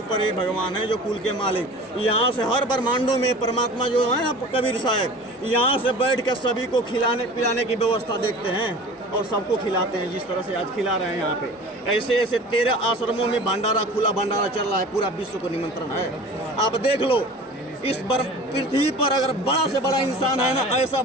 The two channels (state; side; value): normal; both; correlation 0.40